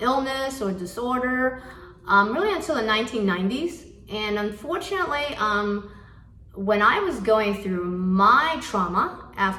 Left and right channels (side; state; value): both; identical; correlation 1.00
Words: illness or disorder, really until the 1990s. And unfortunately, when I was going through my trauma